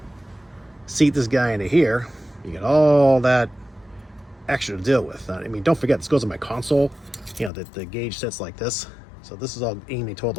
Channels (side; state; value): right; drops out; at 7.5 s